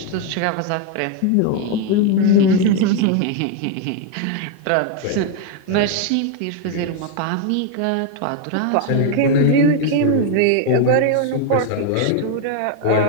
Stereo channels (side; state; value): both; different; correlation 0.01